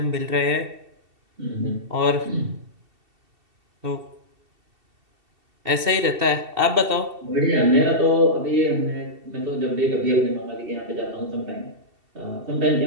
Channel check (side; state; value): left; late; 2.7 ms